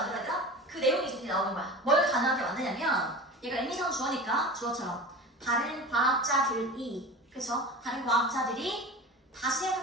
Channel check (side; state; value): both; normal; correlation 0.33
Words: 되나? 그 내용이 이제 나오는 거야. 뭘 가능하게 만드냐면 얘가 의미상 주어니까 주어처럼 다른 과학자들이, 그쵸? 다른 과학자들이 다시